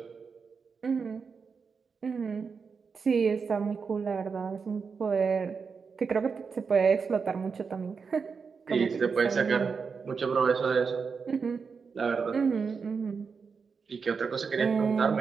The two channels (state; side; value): quieter; left; 5.5 dB